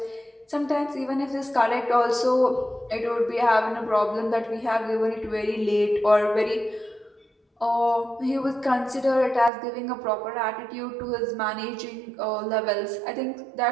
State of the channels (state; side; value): drops out; left; at 9.5 s